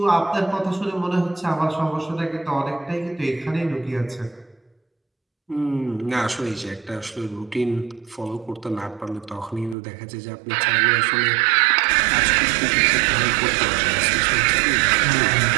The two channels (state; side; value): drops out; left; at 9.8 s